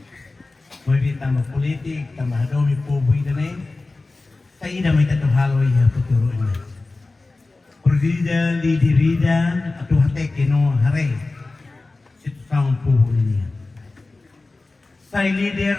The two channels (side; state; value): right; quieter; 3.3 dB